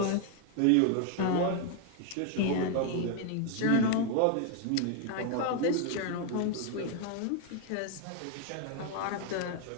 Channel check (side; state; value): both; different; correlation 0.00